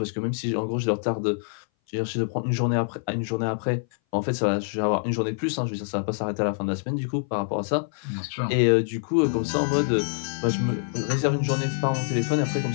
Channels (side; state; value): right; silent; 58 dB below the other